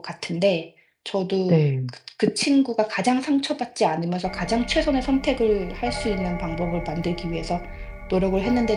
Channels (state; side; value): identical; both; correlation 1.00